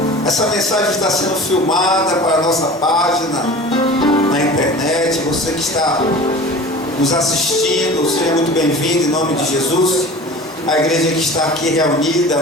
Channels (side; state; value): both; normal; correlation 0.39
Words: Essa mensagem está sendo filmada para a nossa página na internet. Você que está nos assistindo, seja muito bem-vindo em nome de Jesus. A igreja que está aqui reunida